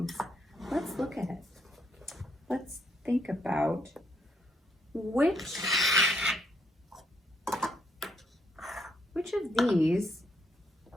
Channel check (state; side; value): normal; both; correlation 0.74